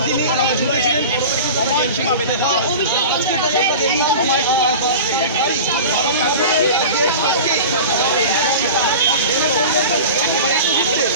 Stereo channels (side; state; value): both; inverted; correlation -0.33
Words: সময়সীমা বেঁধে দেওয়া এই সময়সীমার মধ্যে